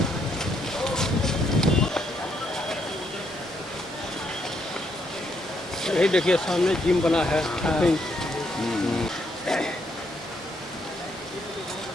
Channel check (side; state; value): both; normal; correlation 0.74